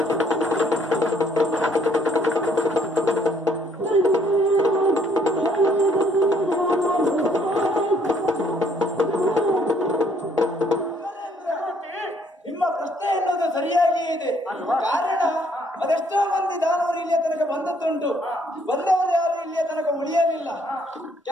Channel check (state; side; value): normal; both; correlation 0.65